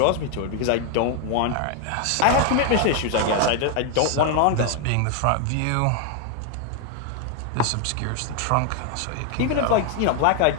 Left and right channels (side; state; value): both; different; correlation 0.01